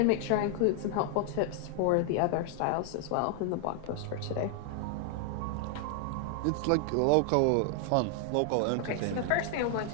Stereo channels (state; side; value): different; both; correlation 0.00